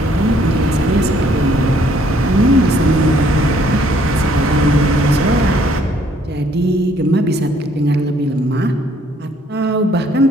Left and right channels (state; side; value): normal; both; correlation 0.64